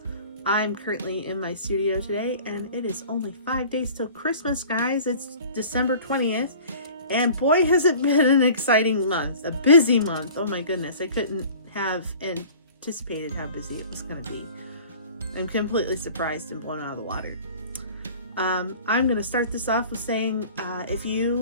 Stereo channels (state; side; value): inverted; both; correlation -0.45